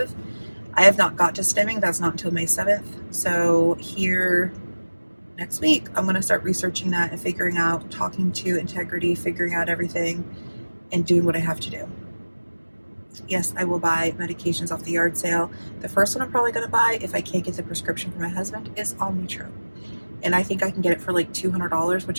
I have not got to stimming. That's not until May 7th. So here next week, I'm going to start researching that and figuring out, talking to Integrity, figuring out everything and doing what I have to do. Yes, I will buy medications off the yard sale. The first one I'm probably going to buy, if I can't get the prescription for my husband, is Omnitrope. And I think I can get it for like $200,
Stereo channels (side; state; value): both; inverted; correlation -1.00